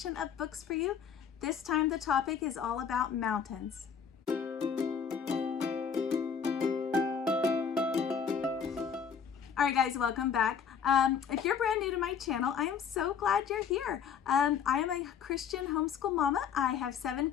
of books for you. This time the topic is all about mountains. All right guys, welcome back. If you're brand new to my channel, I am so glad you're here. I am a Christian homeschool mama. I have 7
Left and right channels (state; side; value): quieter; right; 7.2 dB